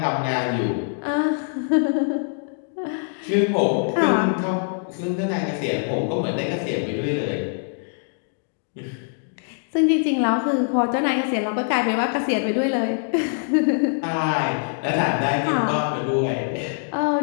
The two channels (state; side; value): silent; right; digital silence